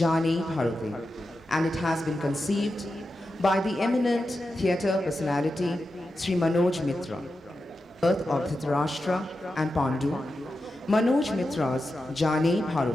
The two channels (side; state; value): both; normal; correlation 0.90